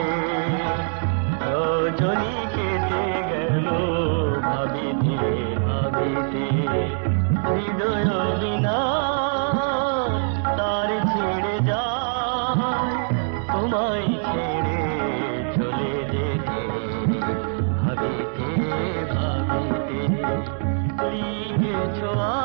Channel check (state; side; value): silent; left; 63 dB below the other